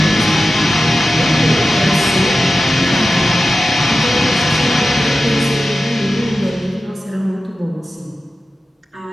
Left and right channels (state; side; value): normal; both; correlation 0.93